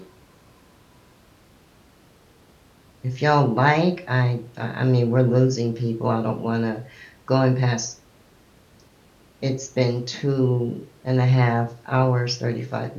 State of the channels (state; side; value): identical; both; correlation 1.00